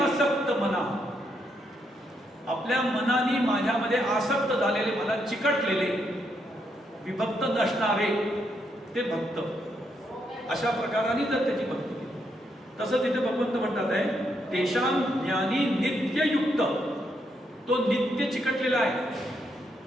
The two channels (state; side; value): normal; both; correlation 0.78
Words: मना. आपल्या मनाने माझ्यामध्ये आसक्त झालेले, मला चिकटलेले, विभक्त नसणारे ते भक्त. अशा प्रकाराने जर त्याची भक्ती केली, तसं तिथे भगवंत म्हणतात आहे तेषां ज्ञानी नित्ययुक्त. तो नित्य चिकटलेला आहे.